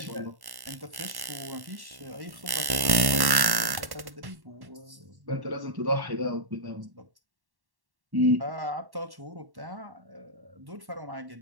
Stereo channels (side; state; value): left; late; 1.1 ms